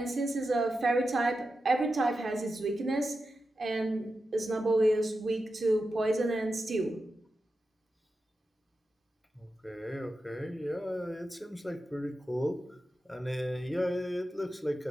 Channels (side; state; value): both; normal; correlation 0.90